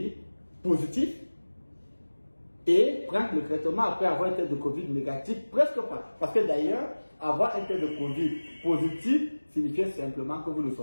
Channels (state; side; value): inverted; both; correlation -1.00